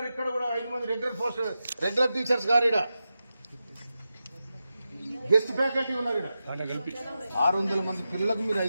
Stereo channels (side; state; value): both; inverted; correlation -0.91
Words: ఇక్కడ కూడా 5 మంది రెగ్యులర్ టీచర్స్ గారు. ఇక్కడ గెస్ట్ ఫ్యాకల్టీ ఉన్నారు. ఇక్కడ 600 మంది పిల్లలకు మీరు